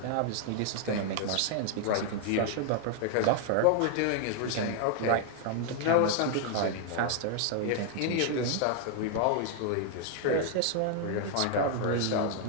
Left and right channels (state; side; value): different; both; correlation 0.00